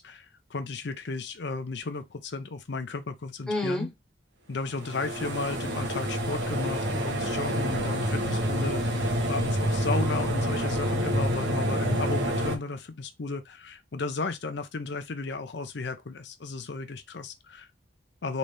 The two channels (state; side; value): normal; both; correlation 0.45